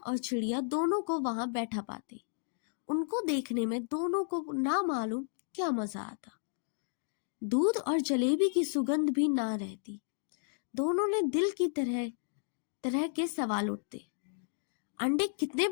चिड़िया दोनों को वहां बैठा पाते। उनको देखने में दोनों को ना मालूम क्या मजा आता। दूध और जलेबी की सुगंध भी ना रहती। दोनों ने दिल की तरह तरह के सवाल उठते। अंडे कितने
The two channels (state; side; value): silent; right; digital silence